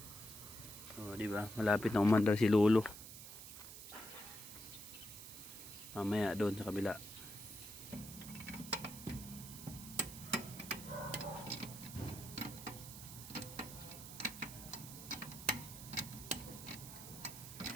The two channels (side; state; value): right; noise; hiss, 12 dB below the sound